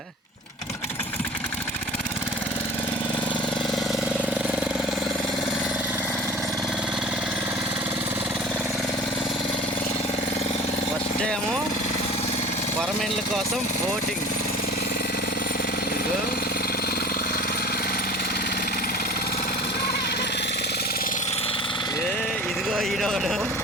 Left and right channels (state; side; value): normal; both; correlation 0.41